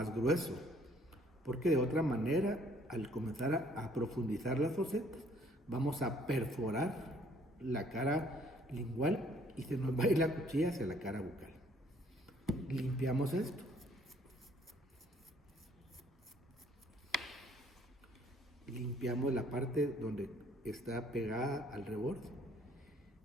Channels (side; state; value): both; normal; correlation 0.61